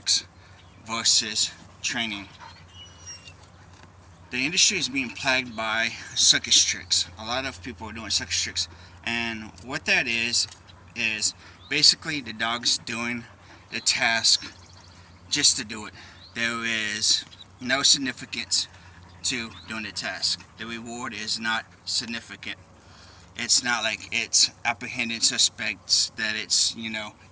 versus training. The industry is being plagued by circus tricks. A lot of people are doing circus tricks, and what that is basically the dog's doing the task just to do it. There is no significance to doing the task. The reward is not significant. It's not like it's apprehending suspects, that it's,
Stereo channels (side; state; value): both; identical; correlation 1.00